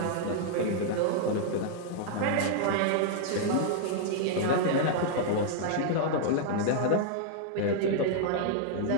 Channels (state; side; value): different; both; correlation -0.01